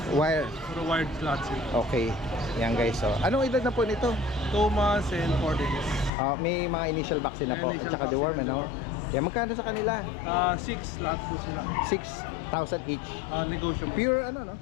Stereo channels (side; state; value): right; drops out; at 6.1 s